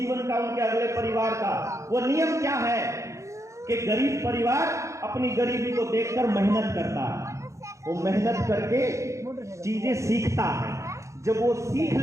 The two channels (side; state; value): left; late; 0.15 ms